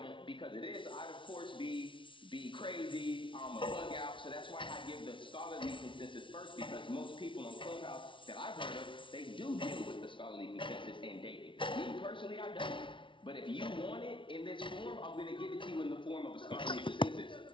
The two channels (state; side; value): late; right; 0.25 ms